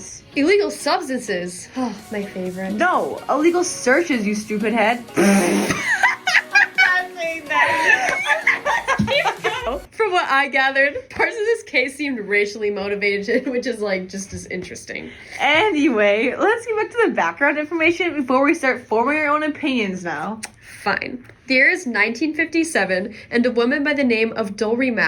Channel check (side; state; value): both; identical; correlation 1.00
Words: Illegal substances. Oh, my favorite. No, illegal searches, you stupid head. I'm saying that. From what I gathered, parts of this case seemed racially motivated, which is just as interesting. Anyway, let's get back to the background information before we start forming our own opinions now. Fine. The year is 1957, and a woman by the name of Dolly